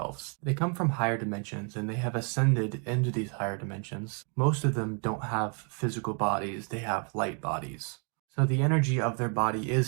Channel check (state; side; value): quieter; left; 39.4 dB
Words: They come from higher dimensions, and they have ascended into these higher dimensions. Most of them don't have physical bodies, they have light bodies. So the energy of their body